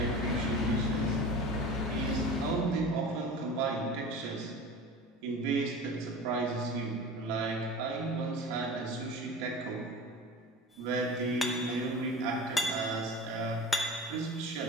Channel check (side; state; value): both; normal; correlation 0.35